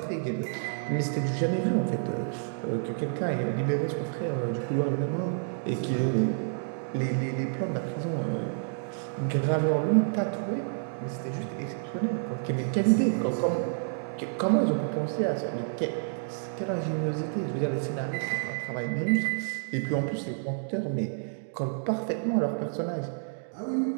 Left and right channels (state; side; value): silent; left; digital silence